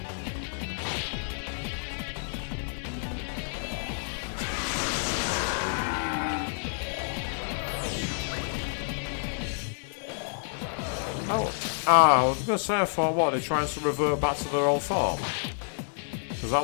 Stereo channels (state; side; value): silent; right; digital silence